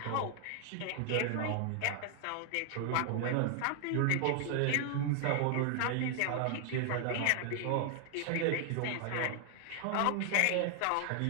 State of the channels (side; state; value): both; different; correlation 0.00